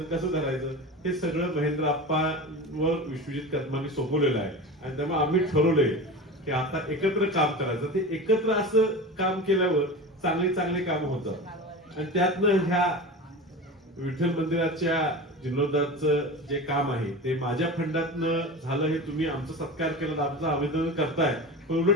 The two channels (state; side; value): normal; both; correlation 0.29